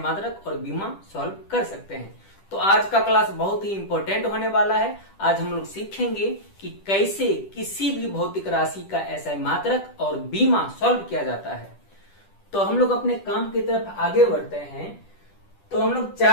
और बीमा सॉल्व कर सकते हैं। तो आज का क्लास बहुत ही इंपॉर्टेंट होने वाला है। आज हम लोग सीखेंगे कि कैसे किसी भी भौतिक राशि का ऐसा मात्रक और बीमा सॉल्व किया जाता है। तो हम लोग अपने काम की तरफ आगे बढ़ते हैं। तो हम लोग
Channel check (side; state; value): right; late; 10 ms